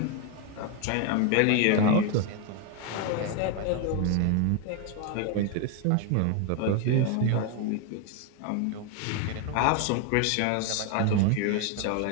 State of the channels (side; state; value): both; different; correlation 0.01